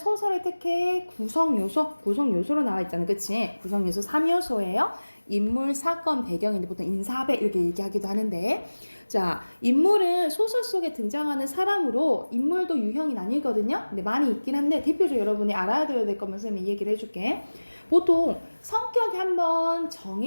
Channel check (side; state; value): both; inverted; correlation -1.00